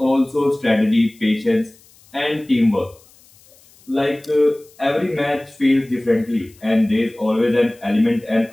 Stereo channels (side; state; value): left; noise; hiss, 28 dB below the sound